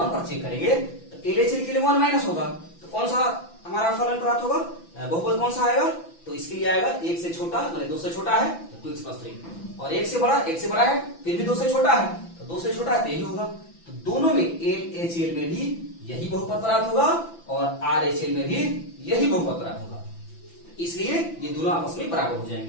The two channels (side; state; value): right; late; 5.9 ms